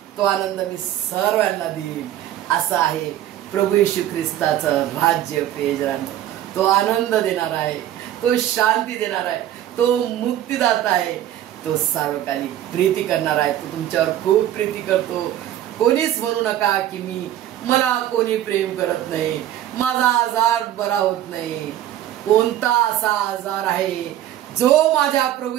तो आनंद मी सर्वांना देईन. असं आहे प्रभू येशू ख्रिस्ताचं राज्य. प्रियजनांनो, तो आनंद देणार आहे, तो शांती देणार आहे, तो मुक्तीदाता आहे, तो सार्वकालिक प्रीती करणार आहे. तो तुमच्यावर खूप प्रीती करतो. कोणीच म्हणू नका की मला कोणी प्रेम करत नाही, माझा आजार बरा होत नाही. कोणता असा आजार आहे जो माझ्या प्रभू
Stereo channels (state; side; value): quieter; left; 12.2 dB